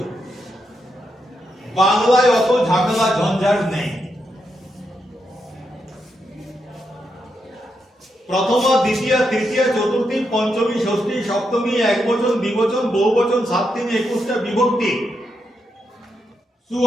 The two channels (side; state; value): both; normal; correlation 0.83